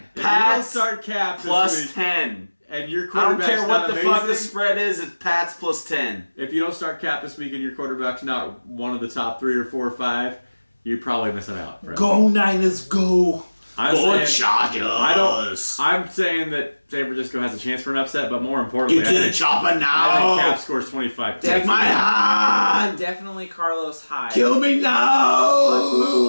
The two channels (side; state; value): both; inverted; correlation -1.00